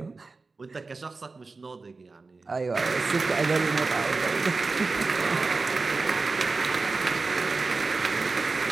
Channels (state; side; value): quieter; left; 3.9 dB